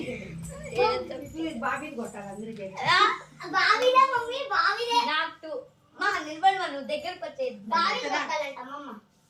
బాబీని కొట్టాలి అందరికీ. నాకు మా నిలబడి నువ్వు దగ్గరకు వచ్చేది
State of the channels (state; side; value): identical; both; correlation 1.00